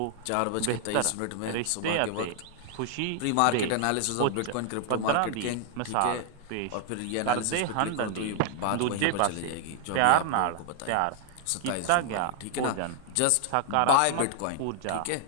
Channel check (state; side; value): different; both; correlation 0.00